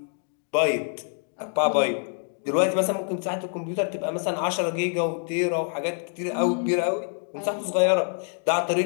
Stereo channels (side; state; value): right; silent; 61 dB below the other